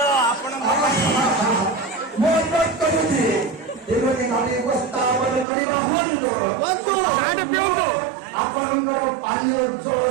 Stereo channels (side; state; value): left; drops out; at 5.5 s